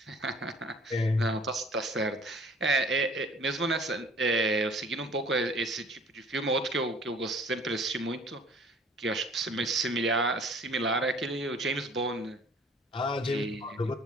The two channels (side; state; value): both; normal; correlation 0.52